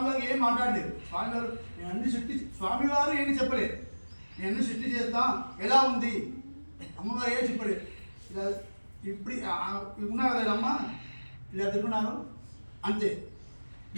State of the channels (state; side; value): inverted; both; correlation -1.00